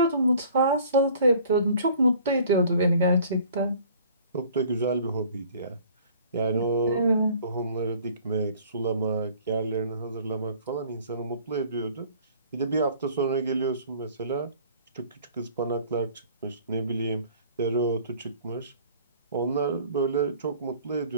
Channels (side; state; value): both; inverted; correlation -0.52